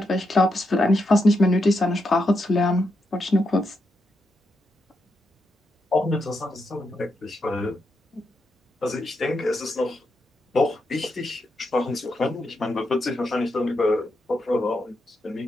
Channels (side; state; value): both; normal; correlation 0.83